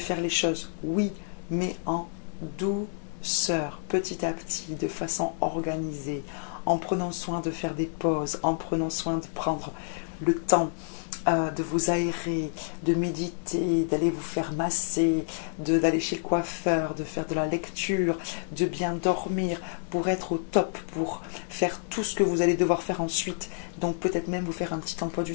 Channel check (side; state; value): right; silent; 59 dB below the other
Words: les choses, oui, mais en douceur, petit à petit, de façon organisée, en prenant soin de faire des pauses, en prenant soin de prendre le temps de vous aérer, de méditer, d'aller vous faire masser, d'aller chez le coiffeur, de faire de la lecture, de bien dormir pour être au top, pour faire tout ce que vous allez devoir faire ensuite. Donc peut-être même vous faire un petit emploi du